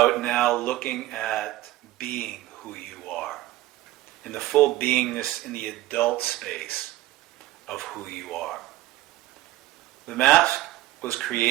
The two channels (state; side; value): quieter; left; 16.4 dB